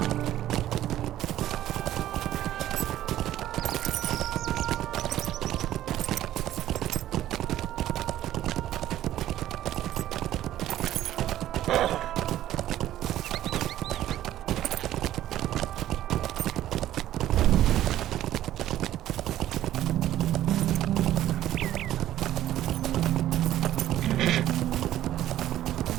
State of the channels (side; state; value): left; quieter; 13.0 dB